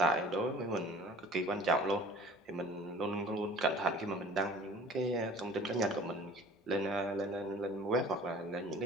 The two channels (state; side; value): normal; both; correlation 0.47